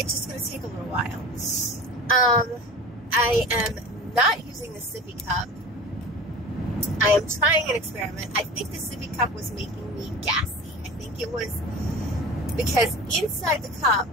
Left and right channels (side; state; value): both; normal; correlation 0.36